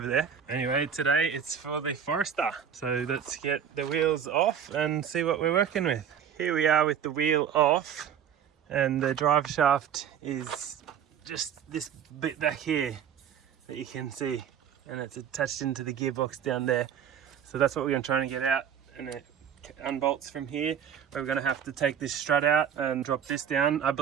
there. Anyway, today it's for the Forester. So let's get the wheels off and see what we're working with. Here we are with the wheel off, and the drive shaft is just this bit back here that you can see, and it's attached into the gearbox down there. So that's what we're going to try and get out, and it unbolts from here. We're going to have to take this strut out and drop this down. I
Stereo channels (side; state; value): left; quieter; 8.3 dB